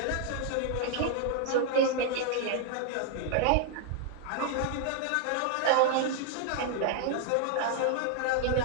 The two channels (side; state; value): both; different; correlation 0.00